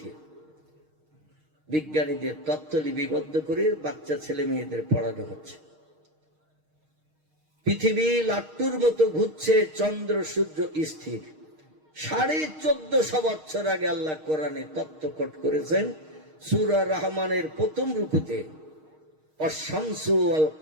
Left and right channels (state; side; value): late; left; 6.4 ms